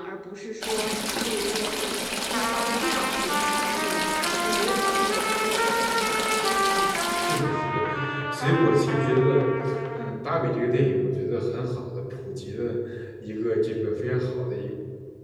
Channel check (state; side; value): identical; both; correlation 1.00